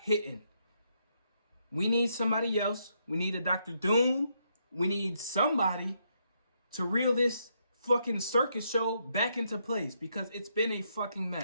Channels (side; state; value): both; inverted; correlation -0.77